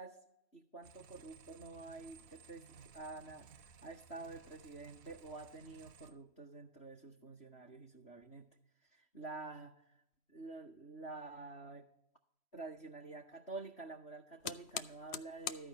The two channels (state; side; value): late; right; 3.1 ms